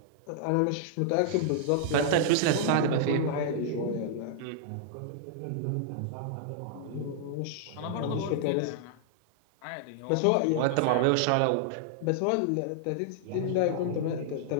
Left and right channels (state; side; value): different; both; correlation -0.01